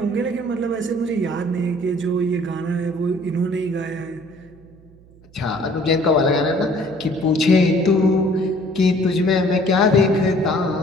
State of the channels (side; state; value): right; noise; hum, 26 dB below the sound